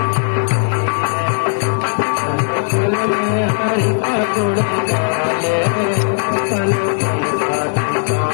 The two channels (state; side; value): silent; right; digital silence